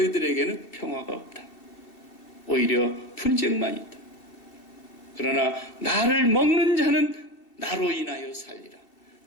평화가 없다. 오히려 분쟁만 있다. 그러나 나를 먹는 자는 나로 인하여 살리라.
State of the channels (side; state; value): right; late; 2.6 ms